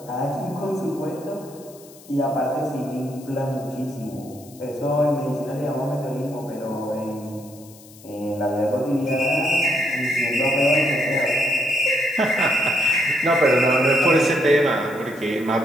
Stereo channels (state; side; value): noise; left; hiss, 22 dB below the sound